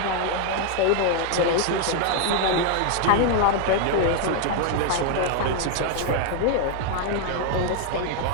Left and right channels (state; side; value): different; both; correlation 0.00